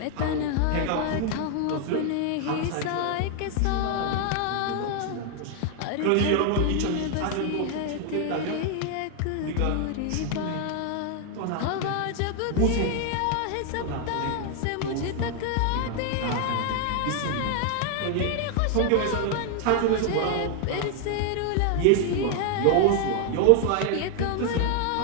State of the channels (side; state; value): both; different; correlation 0.00